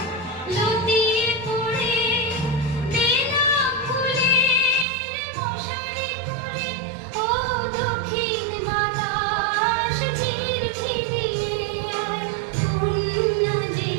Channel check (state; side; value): drops out; left; at 4.9 s